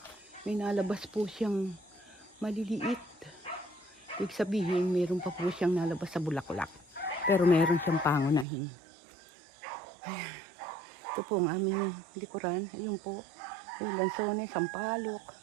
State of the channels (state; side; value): drops out; left; at 8.5 s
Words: may nalabas po siyang maliliit. Ibig sabihin, meron pa po siyang nalabas sa bulaklak. Pero meron siyang pangunahin. Ayan. Ito po ang aming likuran. Ayun po. May lansones, sampalok.